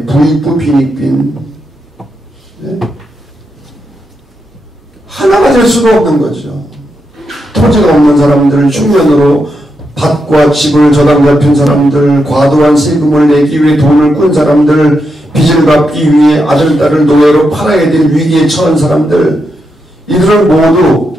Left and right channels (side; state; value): both; normal; correlation 0.84